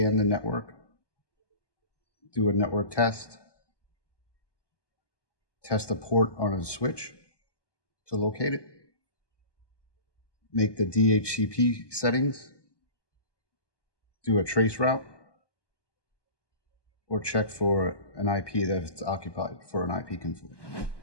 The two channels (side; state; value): right; late; 1.2 ms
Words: the network, do a network test, test a port on a switch to locate it, make the DHCP settings, do a trace route, or check for an IP that's occupied for an IP conflict.